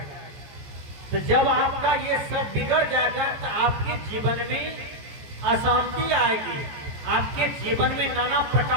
तो जब आपका ये सब बिगड़ जाएगा तो आपके जीवन में अशांति आएगी, आपके जीवन में नाना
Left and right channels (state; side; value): late; left; 14 ms